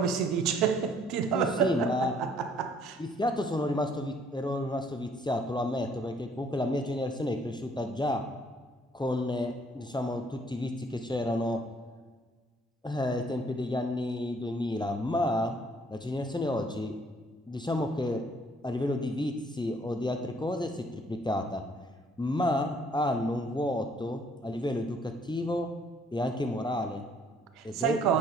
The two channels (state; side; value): normal; both; correlation 0.62